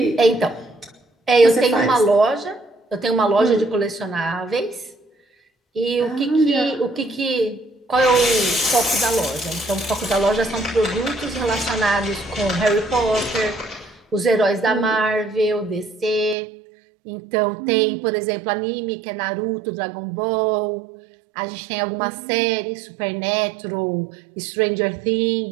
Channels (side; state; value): left; drops out; at 16.4 s